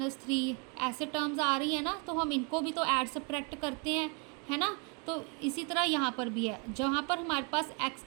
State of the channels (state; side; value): quieter; left; 32.9 dB